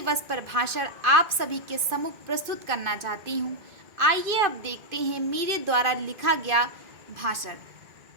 पर भाषण आप सभी के सम्मुख प्रस्तुत करना चाहती हूँ। आइए अब देखते हैं मेरे द्वारा लिखा गया भाषण।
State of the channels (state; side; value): late; left; 2.5 ms